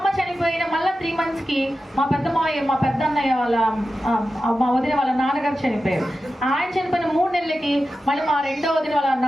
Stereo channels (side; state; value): both; normal; correlation 0.93